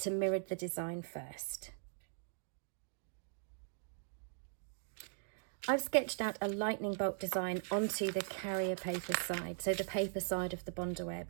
mirror the design first. I've sketched out a lightning bolt design onto the carrier paper side, so the paper side of the Bondaweb.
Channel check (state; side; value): silent; left; digital silence